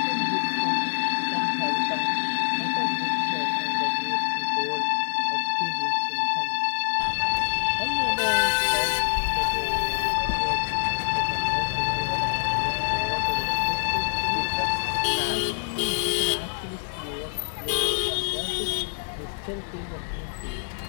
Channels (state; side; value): silent; right; digital silence